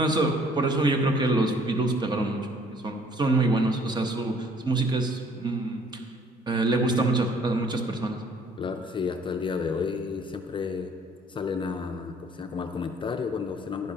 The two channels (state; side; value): normal; both; correlation 0.58